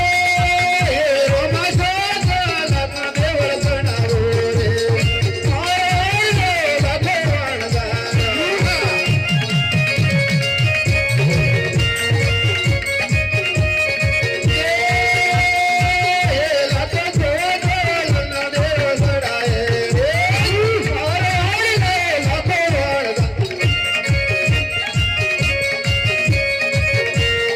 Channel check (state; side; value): identical; both; correlation 1.00